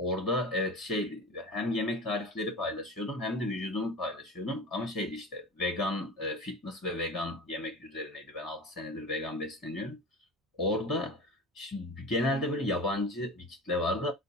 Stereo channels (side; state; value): both; normal; correlation 0.33